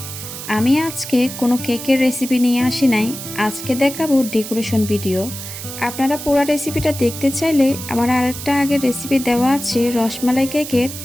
আমি আজকে কোনো কেকের রেসিপি নিয়ে আসি নাই, আজকে দেখাবো ডেকোরেশন ভিডিও। আপনারা পুরো রেসিপিটা দেখতে চাইলে আমার আরেকটা আগের রেসিপি দেওয়া আছে রসমালাই কেকের,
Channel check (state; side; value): noise; right; hiss, 10 dB below the sound